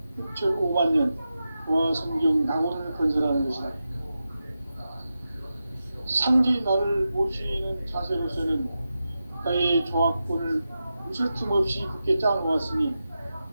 6,5만 년 조화 성경 낙원을 건설하는 것이다. 상제의 나를 모시는 자세로서는 나의 조화권을 무쇠틈 없이 굳게 짜놓았으니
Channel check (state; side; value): inverted; both; correlation -0.91